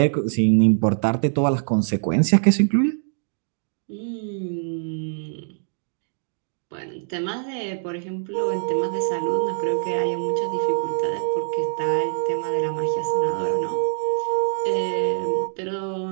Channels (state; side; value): silent; left; digital silence